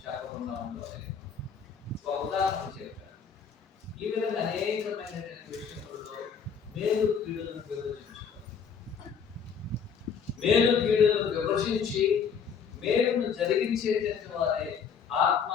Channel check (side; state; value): right; quieter; 6.6 dB